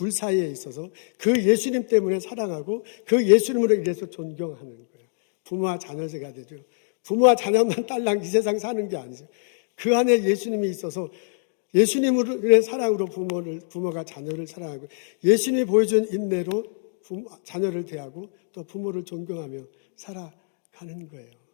사이에 있어서 그 예수님 때문에 사랑하고 그 예수님으로 인해서 존경하는 거예요. 부모와 자녀제가 되죠. 부모와 자녀만 딸랑 이 세상 사는 게 아니죠. 그 안에 예수님이 있어서 예수님의 사랑으로 부모가 자녀를 사랑하고, 예수님이 보여준 인내로 자녀를 대하고 또 부모를 존경하며 살아가는 거예요.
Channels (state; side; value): silent; right; digital silence